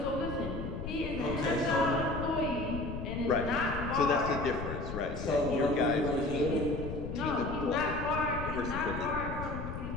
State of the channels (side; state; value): left; noise; rumble, 6 dB below the sound